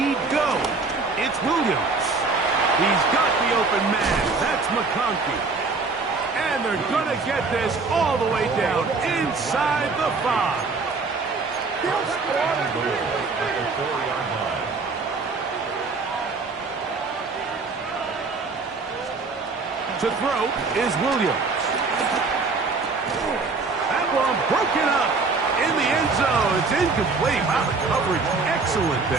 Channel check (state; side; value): quieter; left; 4.1 dB